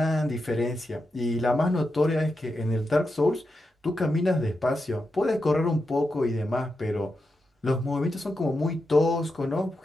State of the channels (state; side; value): normal; both; correlation 0.87